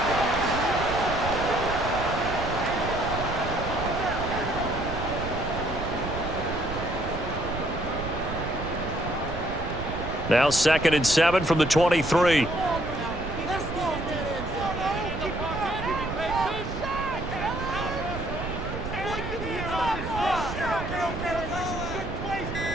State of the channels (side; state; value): right; noise; rumble, 7 dB below the sound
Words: Now 2nd and 7 from the 23.